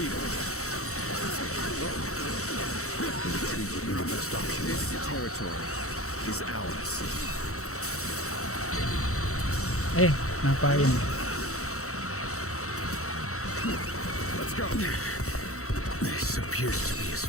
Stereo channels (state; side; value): late; right; 0.64 ms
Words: This territory is ours. Ngapain? Let's go. This appears to be as